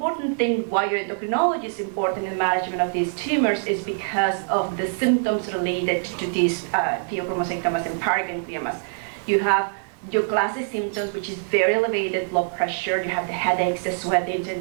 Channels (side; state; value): left; silent; digital silence